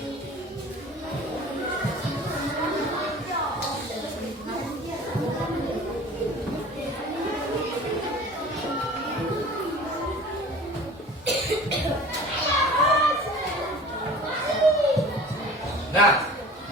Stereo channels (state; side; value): normal; both; correlation 0.42